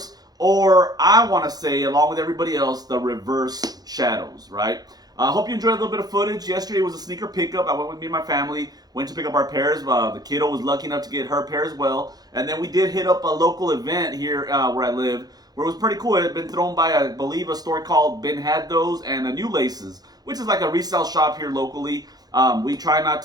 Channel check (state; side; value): late; left; 0.19 ms